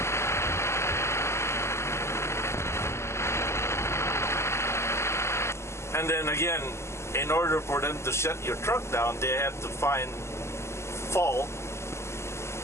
And then again, in order for them to shut your truck down, they have to find a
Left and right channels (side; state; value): right; late; 0.13 ms